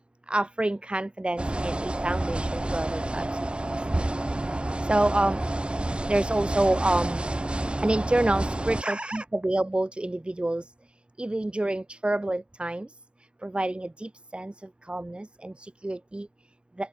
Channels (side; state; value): left; late; 0.052 ms